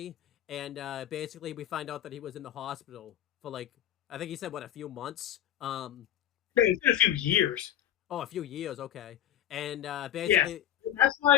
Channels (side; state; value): right; quieter; 11.3 dB